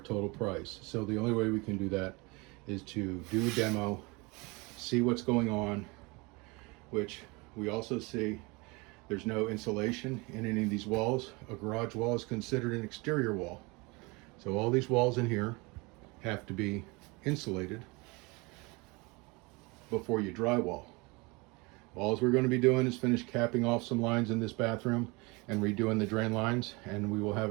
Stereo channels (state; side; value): quieter; left; 26.5 dB